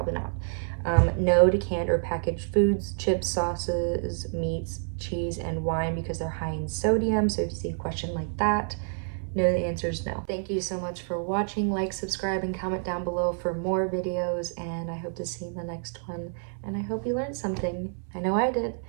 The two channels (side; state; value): left; silent; 59 dB below the other